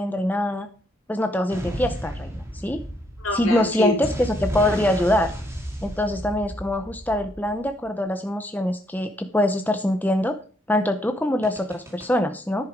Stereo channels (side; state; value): both; normal; correlation 0.72